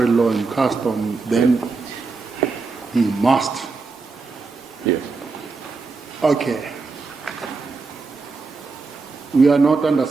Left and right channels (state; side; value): quieter; left; 4.2 dB